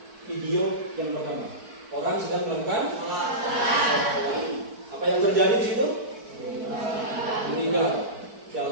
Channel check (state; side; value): late; left; 4.5 ms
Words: video yang pertama. Orang sedang melakukan apa yang terjadi di situ? Meninggal